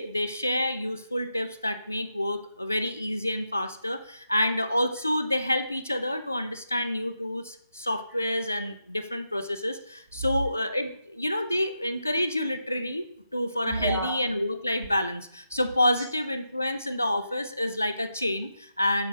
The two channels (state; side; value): inverted; both; correlation -0.85